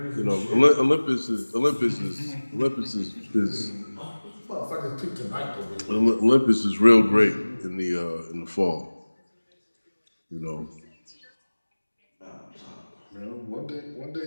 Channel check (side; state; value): both; inverted; correlation -1.00